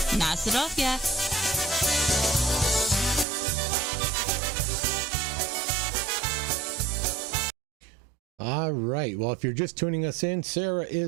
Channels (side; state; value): left; drops out; at 3.2 s